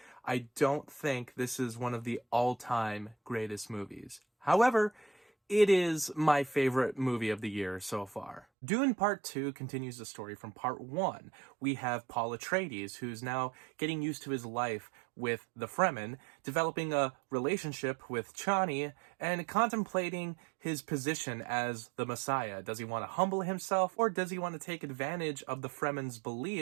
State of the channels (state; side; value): drops out; left; at 8.5 s